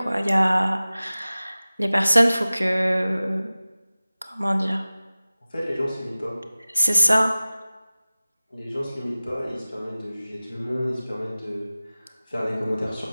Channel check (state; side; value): inverted; both; correlation -0.97